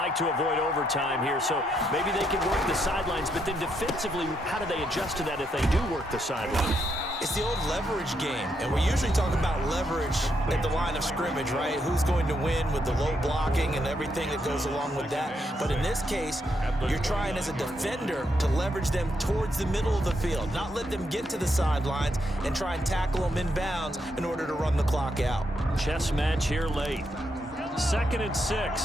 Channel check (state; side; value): normal; both; correlation 0.78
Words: to avoid overtime here, so maybe they can work the sidelines, but then defensively, how do they adjust to that if they do work the sideline? It's the old leverage game, and we're usually talking about leverage at the line of scrimmage, right? Who's going to win with the low blocking and everything that goes along with that. But in this case, you're trying as a defender to leverage them towards the middle of the field, not let them get to the sidelines and try and tackle them inbounds in order to run the clock out. Chess match here late. 2nd and